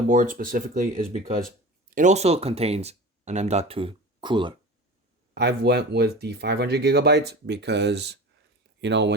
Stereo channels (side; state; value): both; normal; correlation 0.34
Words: specifically is because it also contains an M.2 cooler. I've went with the 500 gigabytes because, you know,